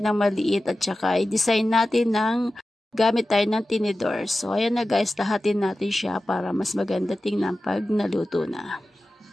ng maliit at saka i-design natin ng gamit tayo ng tinidor. So ayan na guys, lahatin natin siya para mas maganda tingnan pag naluto na.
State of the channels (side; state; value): both; normal; correlation 0.94